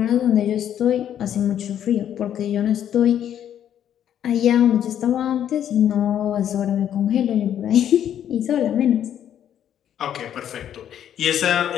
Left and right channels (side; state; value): right; quieter; 10.1 dB